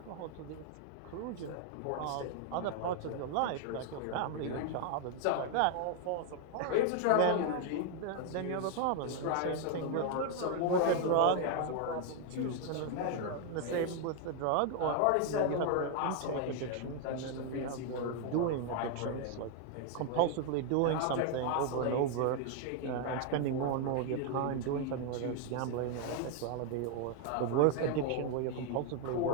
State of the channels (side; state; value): both; different; correlation 0.00